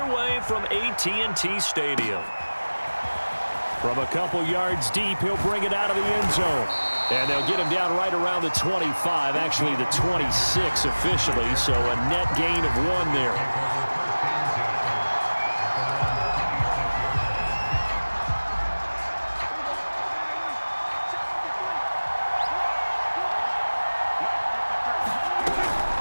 from AT&T Stadium. From a couple yards deep, he'll bring it out of the end zone. And they'll get him down right around the 25, actually the 26 officially, so a net gain of 1 there.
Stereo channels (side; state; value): both; inverted; correlation -1.00